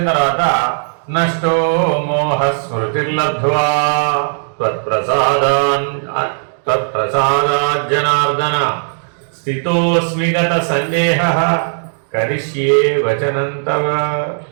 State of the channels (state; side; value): silent; left; digital silence